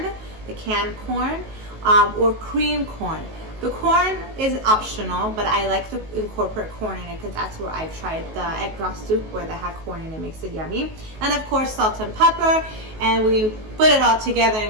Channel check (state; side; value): late; left; 19 ms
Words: the canned corn, or cream corn. The corn is optional, but I like to incorporate corn in it because that's where I've tried the egg drop soup where they had corn in it. It makes it yummy. And of course, salt and pepper. And we put it all together